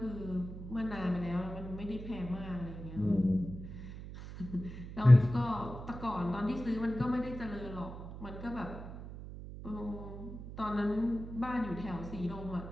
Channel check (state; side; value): noise; right; hum, 11 dB below the sound